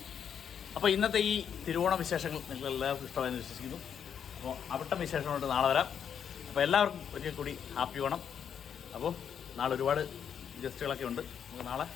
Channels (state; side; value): quieter; right; 8.1 dB